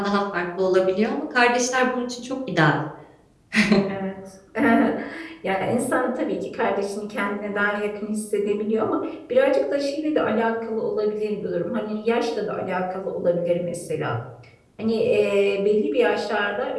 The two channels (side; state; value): both; identical; correlation 1.00